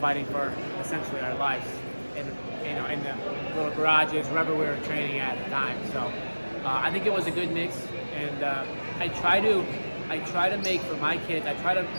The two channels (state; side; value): inverted; both; correlation -1.00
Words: for essentially our lives in the little garages, wherever we were training at the time. So I think it was a good mix, and I try to make for my kids.